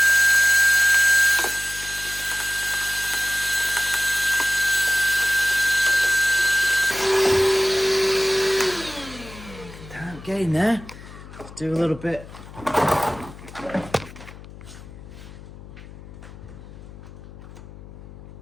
Damn, get in there. Do a little bit.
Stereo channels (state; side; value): noise; left; hum, 16 dB below the sound